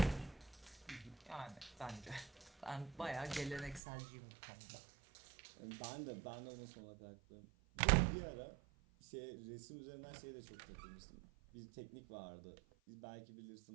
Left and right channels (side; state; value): left; drops out; at 3.8 s